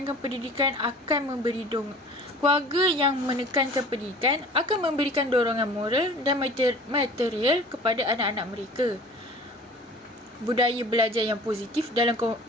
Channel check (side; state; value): both; normal; correlation 0.45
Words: pendidikan akan memberikan dorongan moral dan material kepada anak-anak mereka. Budaya belajar yang positif